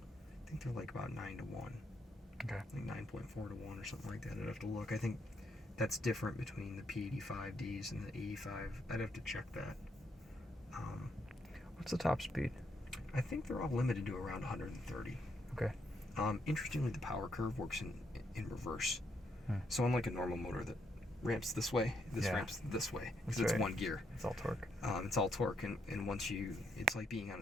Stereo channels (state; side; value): normal; both; correlation 0.76